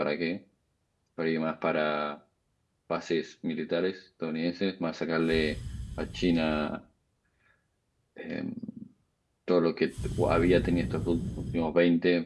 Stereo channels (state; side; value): identical; both; correlation 1.00